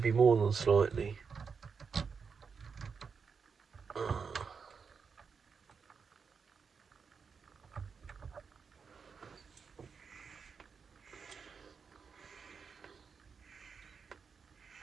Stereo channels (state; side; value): quieter; left; 5.7 dB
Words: more than slightly.